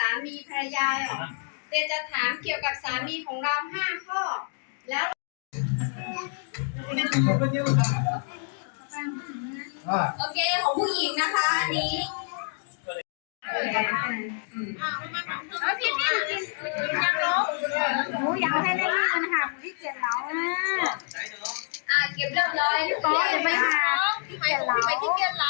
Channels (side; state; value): right; silent; 56 dB below the other